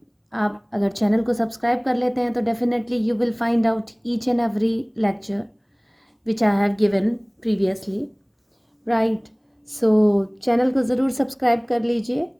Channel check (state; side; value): identical; both; correlation 1.00